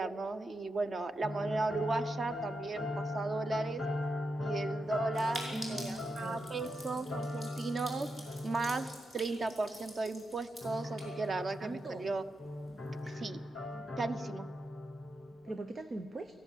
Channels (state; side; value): normal; both; correlation 0.86